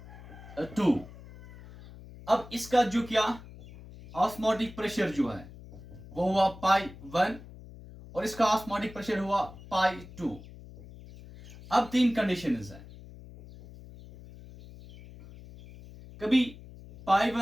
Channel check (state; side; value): noise; left; hum, 17 dB below the sound